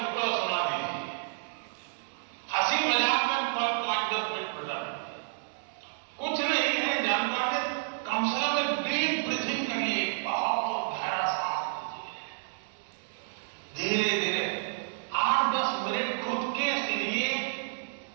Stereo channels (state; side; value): silent; left; digital silence